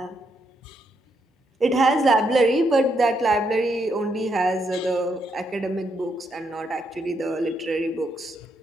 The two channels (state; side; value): normal; both; correlation 0.78